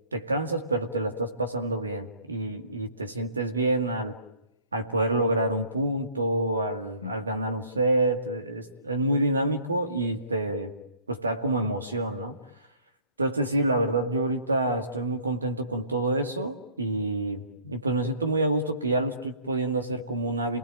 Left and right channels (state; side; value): inverted; both; correlation -0.54